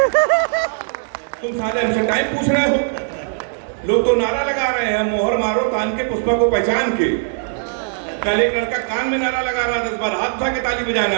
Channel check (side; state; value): left; silent; digital silence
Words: तुम सारे हमसे टाइम पूछ रहे हो। लोग तो नारा लगा रहे हैं मोहर मारो तान के पुष्पा को पहचान के। कल एक लड़का कान में नारा लगा रहा 10 बार, हाथ उठा के ताली